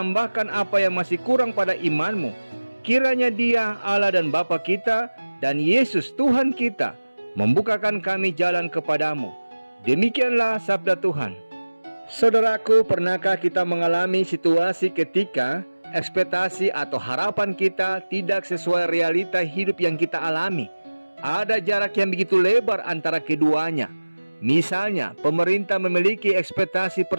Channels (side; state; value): both; inverted; correlation -1.00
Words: apa yang masih kurang pada imanmu. Kiranya Dia, Allah dan Bapa kita, dan Yesus Tuhan kita membukakan kami jalan kepadamu. Demikianlah sabda Tuhan. Saudaraku, pernahkah kita mengalami situasi ketika ekspektasi atau harapan kita tidak sesuai realita hidup yang kita alami? Ada jarak yang begitu lebar antara keduanya. Misalnya, pemerintah memiliki ekspektasi